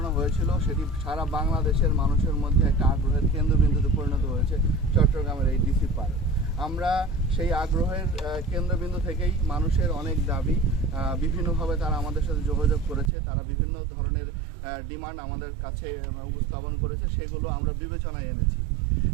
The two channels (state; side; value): drops out; left; at 13.1 s